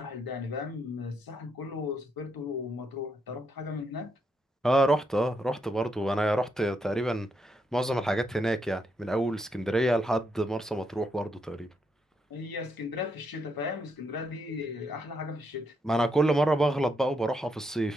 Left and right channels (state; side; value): normal; both; correlation 0.78